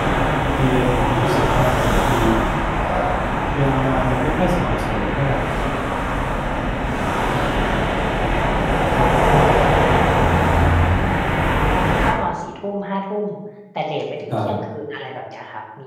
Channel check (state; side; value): identical; both; correlation 1.00